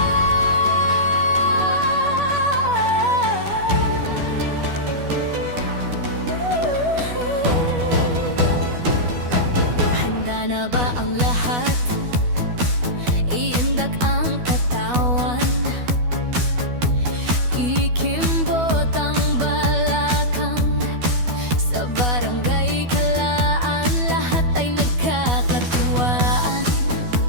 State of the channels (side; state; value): left; late; 12 ms